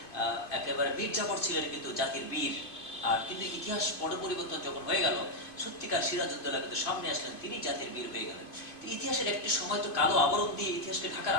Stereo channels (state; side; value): late; right; 2.5 ms